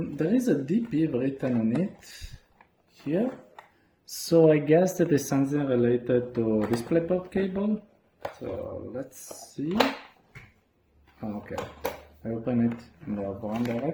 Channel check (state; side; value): identical; both; correlation 1.00